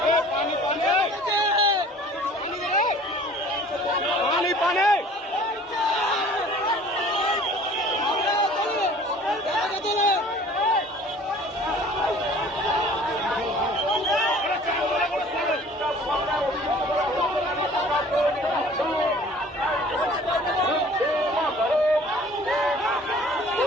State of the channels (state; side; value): normal; both; correlation 0.49